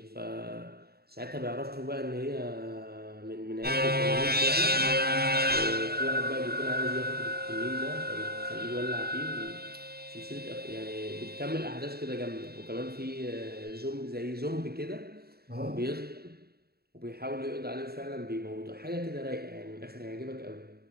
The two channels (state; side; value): late; left; 0.46 ms